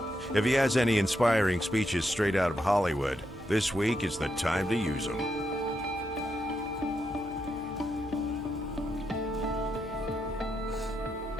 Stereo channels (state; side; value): noise; left; hum, 19 dB below the sound